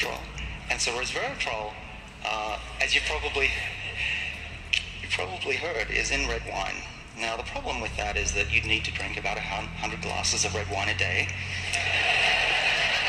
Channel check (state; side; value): identical; both; correlation 1.00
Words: And so resveratrol, as you probably heard, is in red wine. Now the problem with that is that you'd need to drink about 100 glasses of red wine a day.